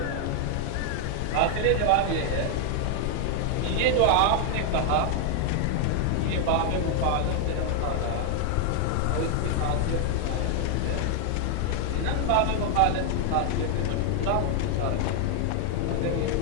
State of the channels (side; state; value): both; different; correlation 0.00